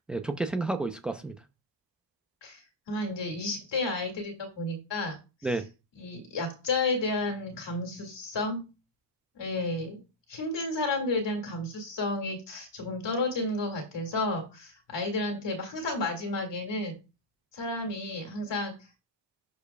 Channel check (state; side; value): normal; both; correlation 0.02